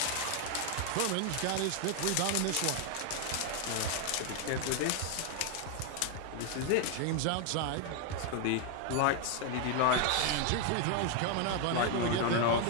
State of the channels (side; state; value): both; different; correlation 0.01